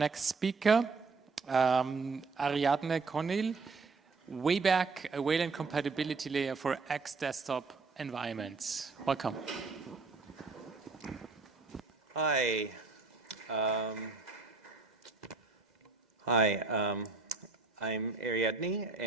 speaker, Ariadne Conill, Wayback, a Wayland compatibility layer for X desktop environments. Welcome. Hi. I'm Ariadne,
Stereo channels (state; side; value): quieter; left; 4.2 dB